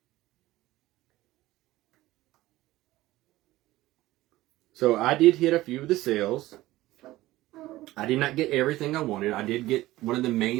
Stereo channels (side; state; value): left; quieter; 17.0 dB